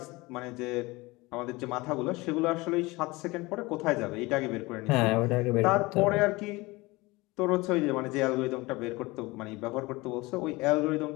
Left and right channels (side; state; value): right; quieter; 22.4 dB